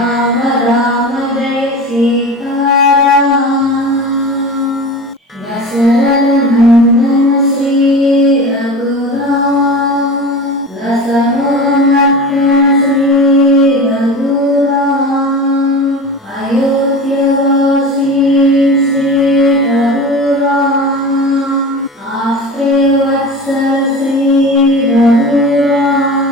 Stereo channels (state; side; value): normal; both; correlation 0.32